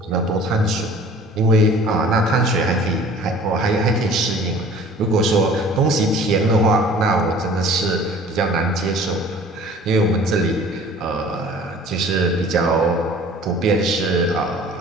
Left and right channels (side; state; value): both; normal; correlation 0.48